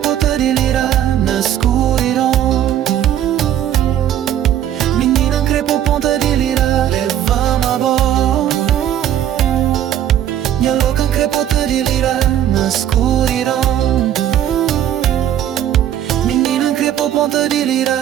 de lira na escuridão. Menina crepo ponta de lira, leva-me a bola. Minha louca crepota de lira na escuridão. Menina crepo ponta de lira.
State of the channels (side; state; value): left; quieter; 11.0 dB